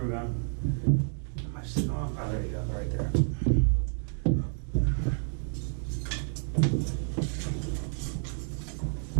gun. Am I sitting on? Oh, there you go, right there.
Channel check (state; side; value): silent; left; 57 dB below the other